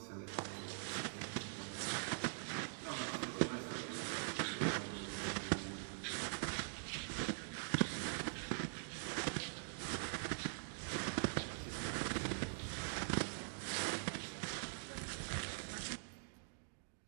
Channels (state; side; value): silent; left; digital silence